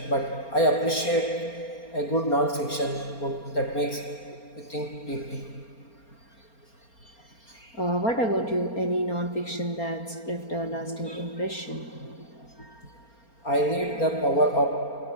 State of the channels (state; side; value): late; right; 4.3 ms